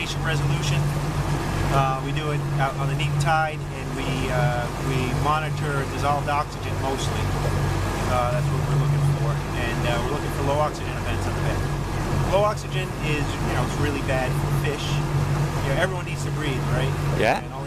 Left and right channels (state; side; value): identical; both; correlation 1.00